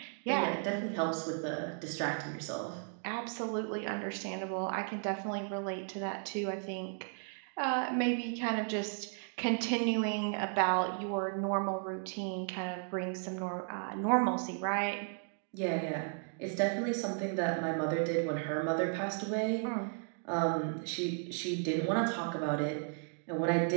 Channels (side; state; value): left; silent; 55 dB below the other